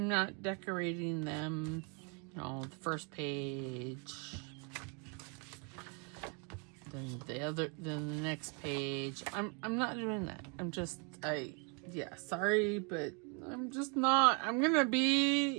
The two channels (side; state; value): left; quieter; 35.6 dB